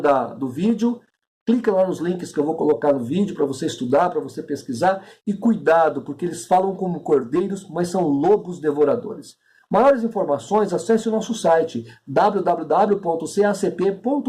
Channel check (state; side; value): identical; both; correlation 1.00